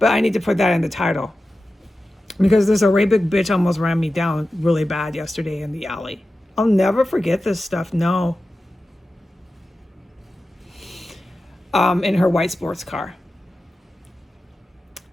I need to put that in the title. Because this Arabic bitch almost ran me down really bad yesterday in the alley. I'll never forget this stuff, no. In her white sports car.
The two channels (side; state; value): both; normal; correlation 0.93